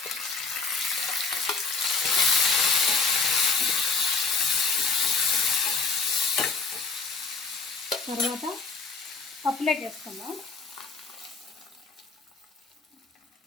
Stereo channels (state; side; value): quieter; right; 4.6 dB